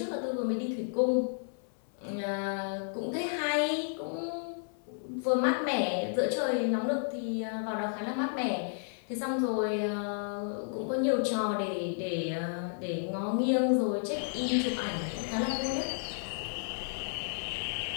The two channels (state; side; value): silent; right; 56 dB below the other